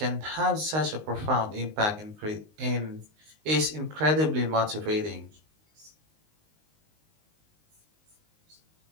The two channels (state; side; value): late; left; 19 ms